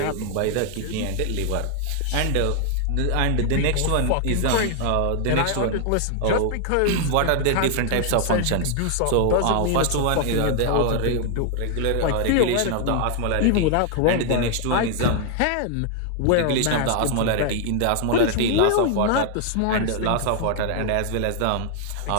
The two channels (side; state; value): both; different; correlation 0.00